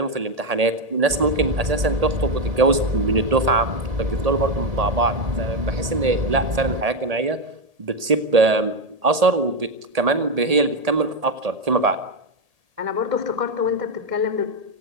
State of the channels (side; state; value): left; late; 1.8 ms